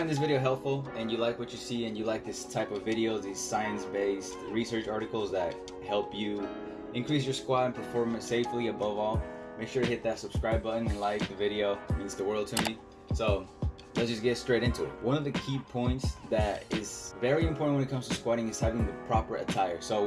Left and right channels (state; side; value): identical; both; correlation 1.00